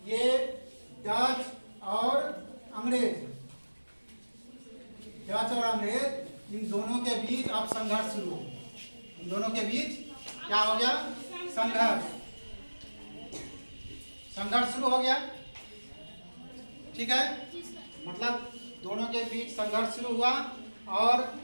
ये डच और अंग्रेज, इन दोनों के बीच अब संघर्ष शुरू हो, इन दोनों के बीच क्या हो गया, संघर्ष शुरू हो गया, ठीक है। मतलब दोनों के बीच संघर्ष शुरू हुआ, और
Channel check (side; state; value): both; inverted; correlation -1.00